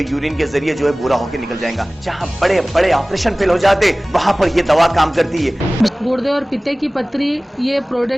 के जरिए जो है बुरा होकर निकल जाएगा। जहां बड़े बड़े ऑपरेशन फेल हो जाते वहां पर ये दवा काम करती है। गुर्दे और पित्ते की पथरी ये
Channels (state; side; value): normal; both; correlation 0.98